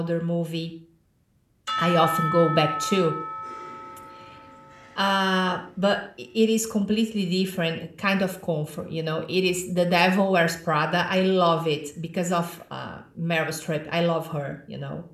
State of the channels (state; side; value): identical; both; correlation 1.00